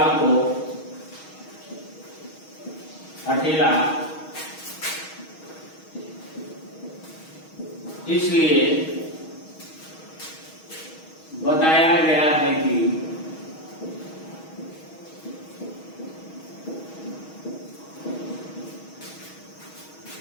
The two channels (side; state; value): right; late; 6.3 ms